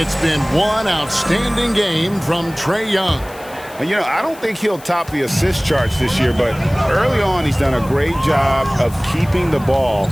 been one outstanding game from Trae Young. And, you know, I don't think he'll top the assist charts this year, but early on he's done a great job of keeping the ball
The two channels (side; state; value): left; noise; hiss, 21 dB below the sound